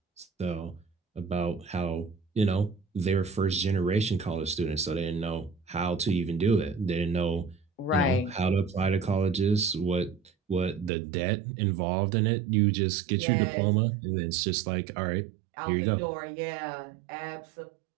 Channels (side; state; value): left; drops out; at 10.9 s